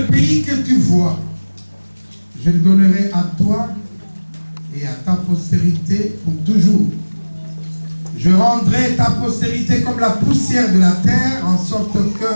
pays que tu vois, je le donnerai à toi et à ta postérité pour toujours. Je rendrai ta postérité comme la poussière de la terre, en sorte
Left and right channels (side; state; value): both; inverted; correlation -1.00